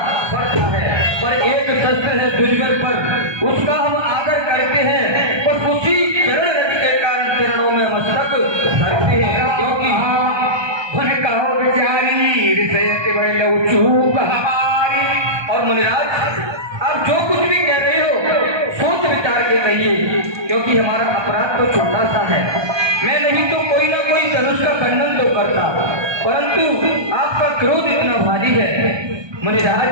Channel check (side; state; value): left; late; 1.2 ms